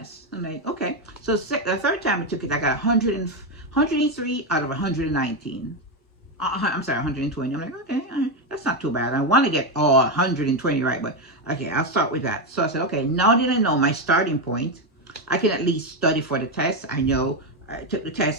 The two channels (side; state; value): both; normal; correlation 0.07